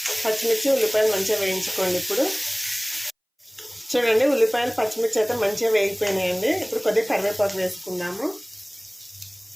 పచ్చిమిర్చి ఉల్లిపాయలు మంచిగా వేయించుకోండి. ఇప్పుడు చూడండి, ఉల్లిపాయలు పచ్చిమిర్చి అయితే మంచిగా వేగిపోయినాయండి. ఇప్పుడు కొద్దిగా కరివేపాకు వేసుకుందాము,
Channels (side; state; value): both; identical; correlation 1.00